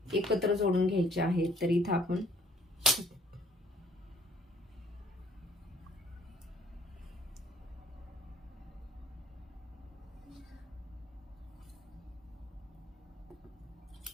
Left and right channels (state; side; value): normal; both; correlation 0.59